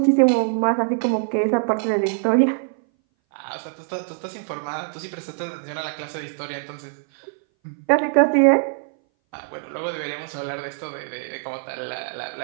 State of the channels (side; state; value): left; silent; 59 dB below the other